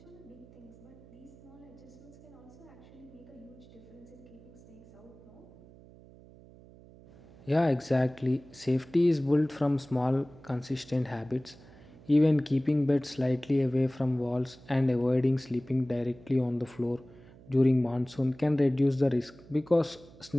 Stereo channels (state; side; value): noise; right; hum, 22 dB below the sound